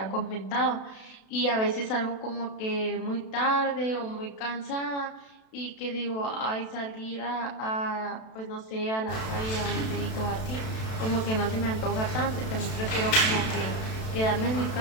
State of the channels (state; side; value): late; right; 32 ms